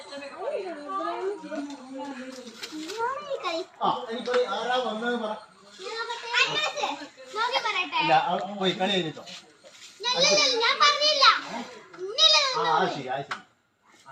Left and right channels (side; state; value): both; identical; correlation 1.00